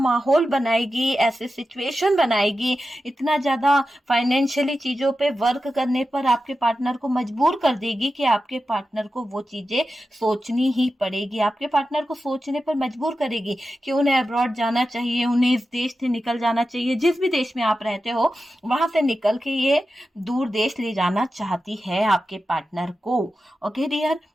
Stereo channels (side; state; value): both; normal; correlation 0.92